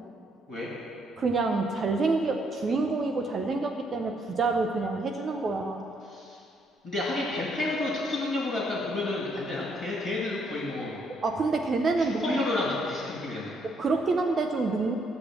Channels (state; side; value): normal; both; correlation 0.71